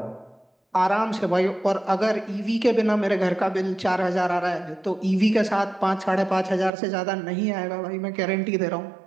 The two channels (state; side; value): drops out; left; at 6.7 s